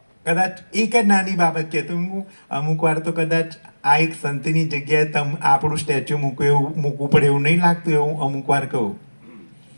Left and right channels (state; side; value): inverted; both; correlation -1.00